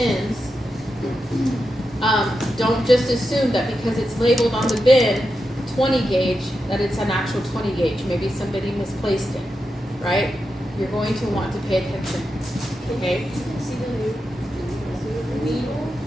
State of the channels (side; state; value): both; normal; correlation 0.88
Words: Don't just assume that because it's labeled on the bin 20 gauge that it's an actual 20 gauge. Maybe somebody misplaced it, right? You're going to want to pay attention. Okay? See the needle